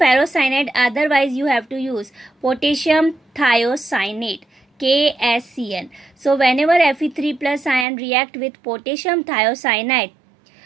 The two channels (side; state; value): left; drops out; at 7.9 s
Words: otherwise you have to use potassium thiocyanate, KSCN. So whenever Fe3+ ion react with potassium thiocyanide,